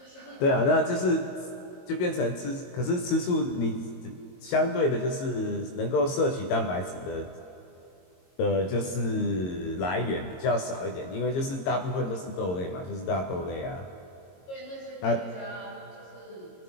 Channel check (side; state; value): right; late; 22 ms